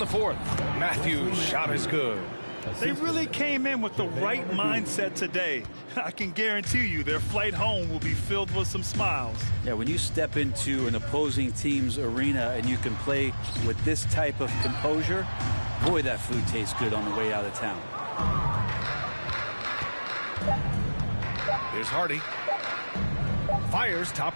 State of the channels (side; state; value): both; inverted; correlation -1.00